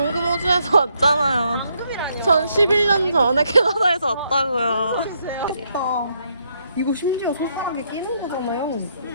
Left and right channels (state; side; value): inverted; both; correlation -0.75